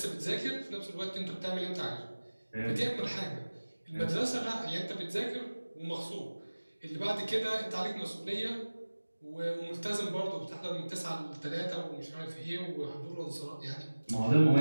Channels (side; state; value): both; inverted; correlation -1.00